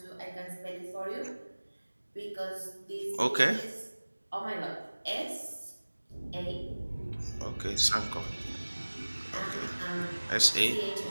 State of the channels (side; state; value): both; inverted; correlation -1.00